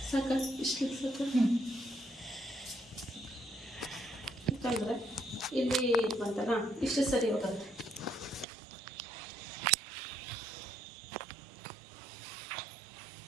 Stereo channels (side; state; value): left; drops out; at 8.5 s